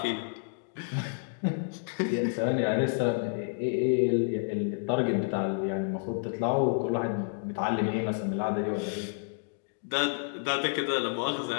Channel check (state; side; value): silent; right; digital silence